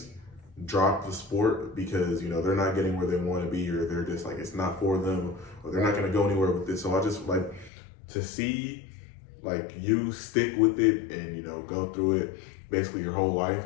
drop the sport because, you know, they're not getting where they want to be, or they're just like, it's not for them, or they're not going to go anywhere with this. So I just like to see like you stick with it and, you know, go through it basically your whole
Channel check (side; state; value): right; drops out; at 7.7 s